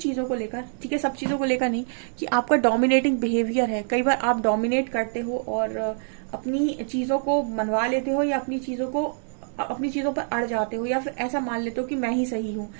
चीजों को लेकर, ठीक है, सब चीजों को लेकर नहीं, कि आपका डोमिनेटिंग बिहेवियर है। कई बार आप डोमिनेट करते हो और अपनी चीजों को मनवा लेते हो, या अपनी चीजों पर अड़ जाते हो, या फिर ऐसा मान लेते हो कि मैं ही सही हूँ।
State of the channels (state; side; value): silent; left; 62 dB below the other